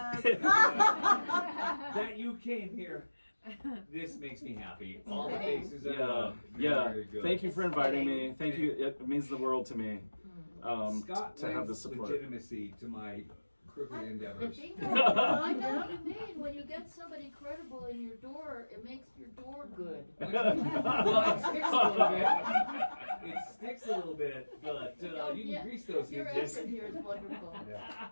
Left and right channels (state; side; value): inverted; both; correlation -1.00